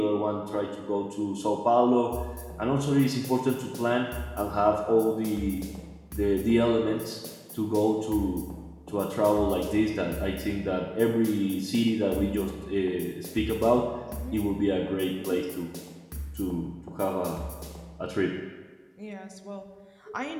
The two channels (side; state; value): both; identical; correlation 1.00